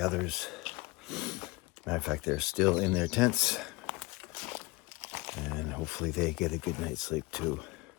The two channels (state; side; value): quieter; right; 22.9 dB